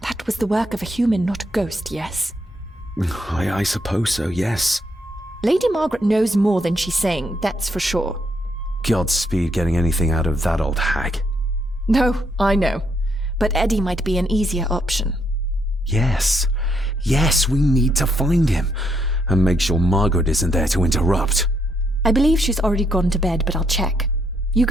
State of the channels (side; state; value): both; normal; correlation 0.75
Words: That was the work of a human, not a ghost, yes? I suppose so, yes. Lady Margaret knows more than she's saying, that's for sure. Godspeed getting anything out of that old hag. No, I know. But Eddie might be an easier option. Yes. Yes, we need to find him. And make sure Margaret isn't there to interrupt. I believe she's already gone to bed, but I'll check. You